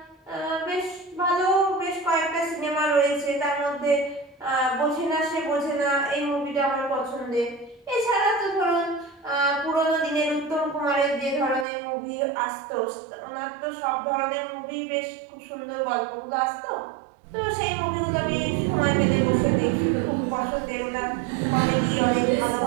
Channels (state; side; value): drops out; left; at 11.7 s